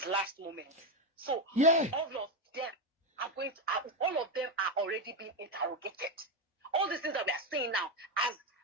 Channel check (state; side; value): normal; both; correlation 0.10